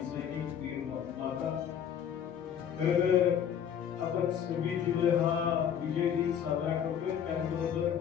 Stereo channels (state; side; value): quieter; right; 8.7 dB